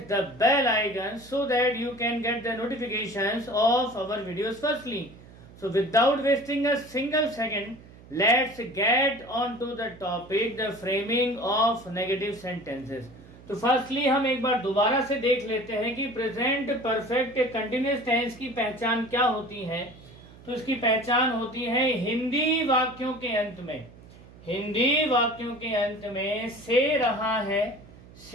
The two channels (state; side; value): noise; right; hum, 21 dB below the sound